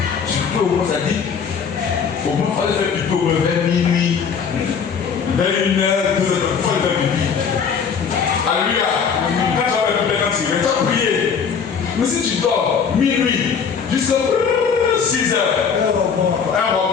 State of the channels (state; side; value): quieter; right; 6.5 dB